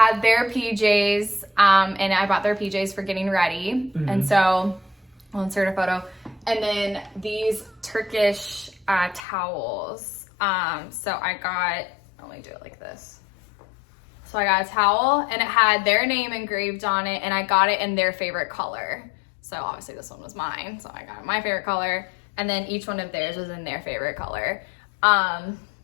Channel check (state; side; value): drops out; right; at 9.2 s